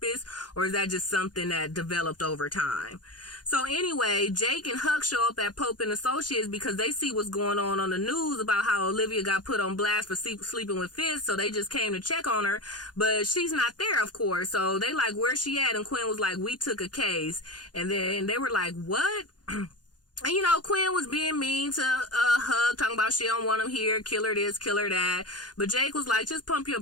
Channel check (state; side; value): late; right; 0.69 ms